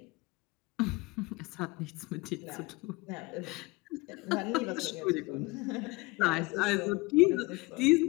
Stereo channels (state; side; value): quieter; right; 24.2 dB